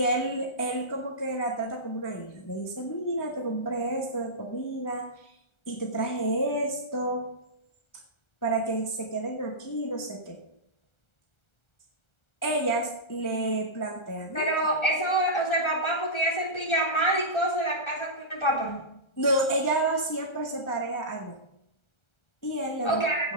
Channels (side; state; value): right; late; 1.3 ms